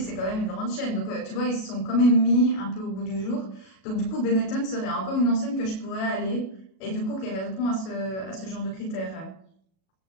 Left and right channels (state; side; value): late; right; 37 ms